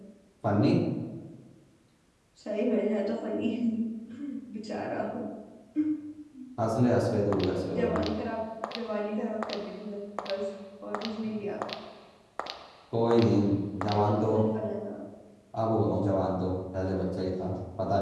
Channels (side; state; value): both; identical; correlation 1.00